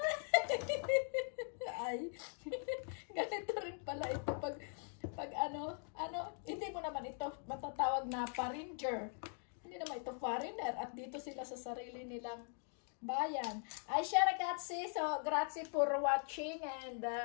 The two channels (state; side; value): silent; right; 50 dB below the other